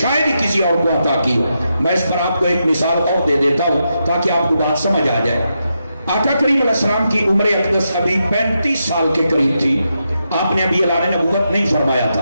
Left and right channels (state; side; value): inverted; both; correlation -0.85